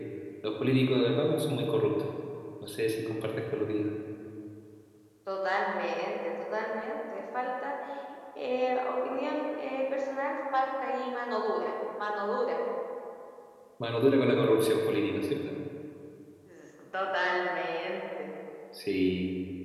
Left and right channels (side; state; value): both; identical; correlation 1.00